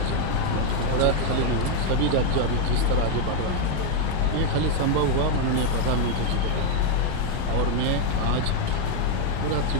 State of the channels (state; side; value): different; both; correlation 0.01